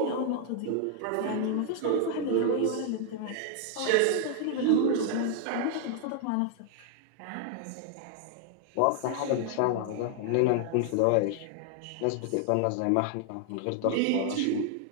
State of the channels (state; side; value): different; both; correlation 0.00